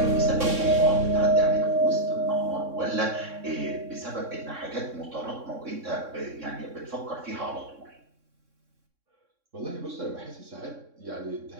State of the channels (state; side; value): late; left; 3.6 ms